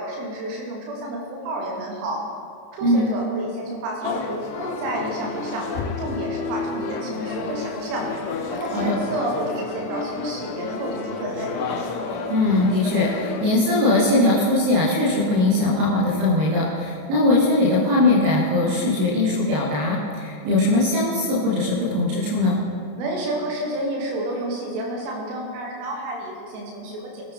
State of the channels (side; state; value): left; late; 33 ms